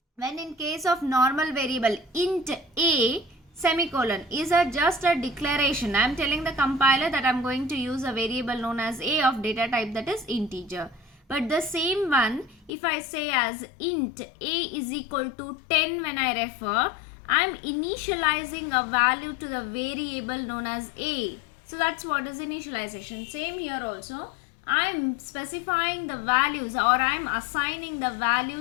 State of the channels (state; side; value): drops out; right; at 12.7 s